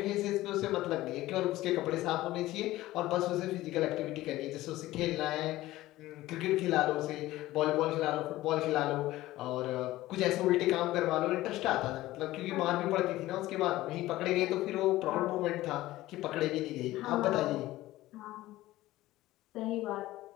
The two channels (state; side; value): quieter; right; 16.6 dB